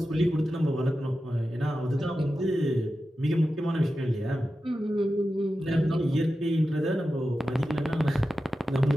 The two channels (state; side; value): normal; both; correlation 0.92